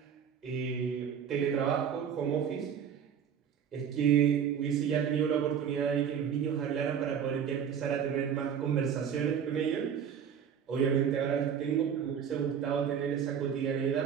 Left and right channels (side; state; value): left; quieter; 8.0 dB